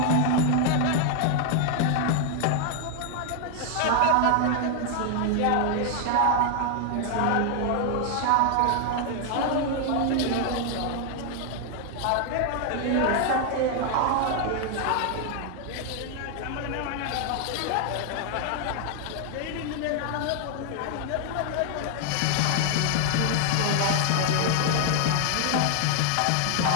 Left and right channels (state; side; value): different; both; correlation 0.00